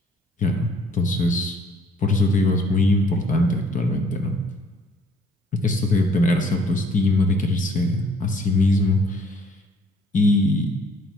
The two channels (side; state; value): both; normal; correlation 0.60